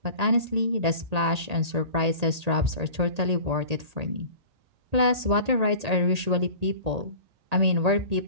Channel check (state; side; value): late; left; 1.8 ms